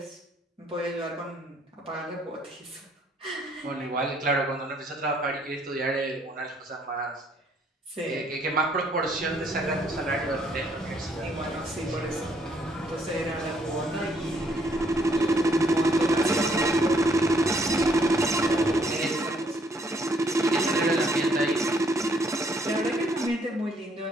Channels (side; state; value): both; normal; correlation 0.68